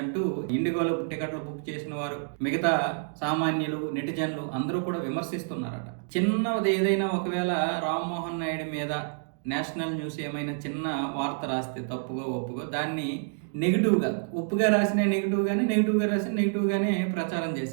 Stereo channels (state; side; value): silent; left; digital silence